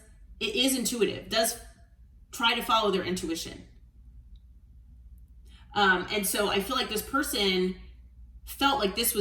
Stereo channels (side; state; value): both; identical; correlation 1.00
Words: is intuitive, does try to follow their intuition. And so I feel like this person felt like this